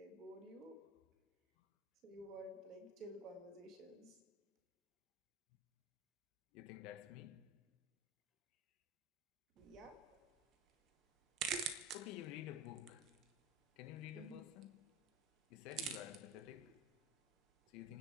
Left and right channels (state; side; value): normal; both; correlation 0.30